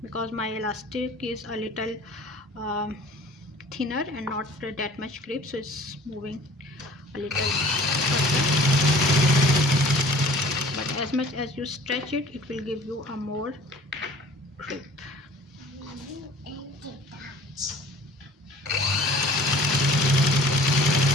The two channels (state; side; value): normal; both; correlation 0.49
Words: because my elastic is a little thinner and not that much grip, so it's moving a little further, but as much as you stretch it, it will give you a more grip.